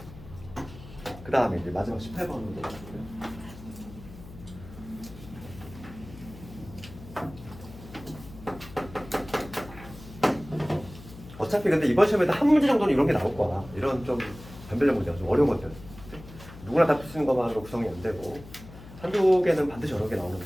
그 다음에 이제 마지막 18번으로. 어차피 근데 이번 시험에도 한 문제 정도는 이런 게 나올 거야. 이런 좀 변별력 문제가 좀 어려운 것들. 누구나 다 풀 수 있는 것만으로 구성이 안 되고 한두 개는 반드시 여러 개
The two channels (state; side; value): noise; left; hum, 16 dB below the sound